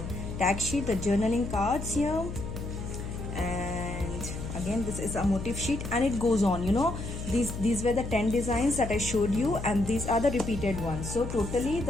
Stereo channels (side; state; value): left; noise; hum, 7 dB below the sound